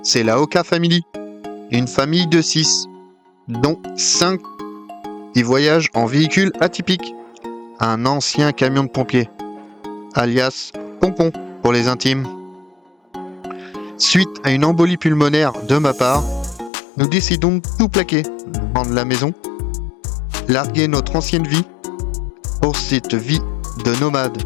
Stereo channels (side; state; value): right; drops out; at 16.7 s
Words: c'est la Oka Family, une famille de 6, dont 5 qui voyagent en véhicule atypique, un ancien camion de pompiers, alias Pompon pour les intimes. Suite à une embolie pulmonaire de ma part, nous décidons de tout plaquer, vendre la maison, larguer notre ancienne vie pour cette vie de nomade